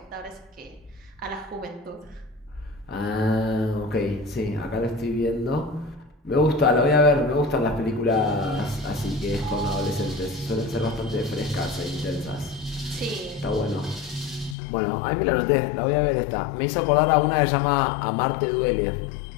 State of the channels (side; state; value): right; drops out; at 14.6 s